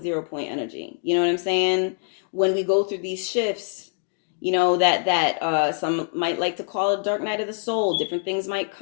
0 point energy. You know what I'm saying? When we go through these shifts, that some might like to call it dark night of the soul. Different things might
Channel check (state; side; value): silent; right; 62 dB below the other